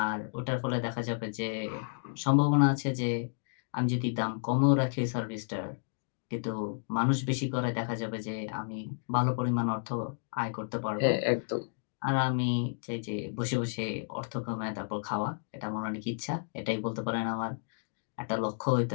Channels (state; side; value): silent; right; digital silence